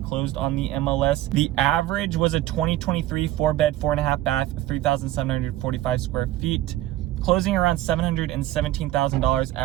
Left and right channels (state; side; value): quieter; left; 14.8 dB